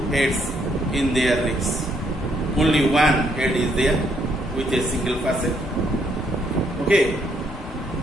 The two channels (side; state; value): both; normal; correlation 0.72